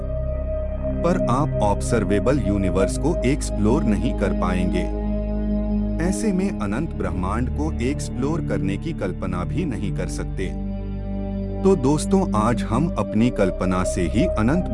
पर आप ऑब्जर्वेबल यूनिवर्स को एक्सप्लोर नहीं कर पाएंगे। ऐसे में अनंत ब्रह्मांड को एक्सप्लोर करने की कल्पना भी नहीं कर सकते। तो दोस्तों, आज हम अपनी कल्पना से ही अनंत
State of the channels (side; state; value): both; identical; correlation 1.00